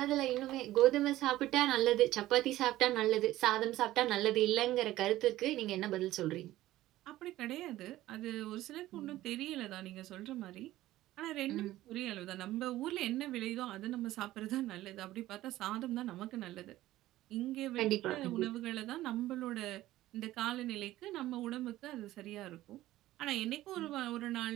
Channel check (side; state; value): left; quieter; 15.5 dB